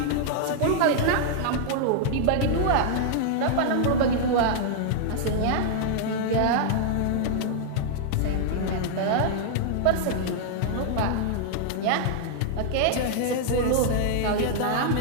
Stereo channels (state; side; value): different; both; correlation -0.01